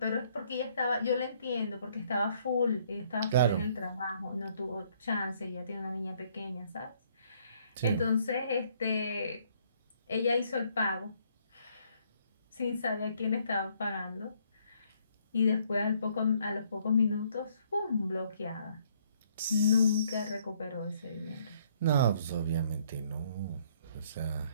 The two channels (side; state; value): both; inverted; correlation -0.66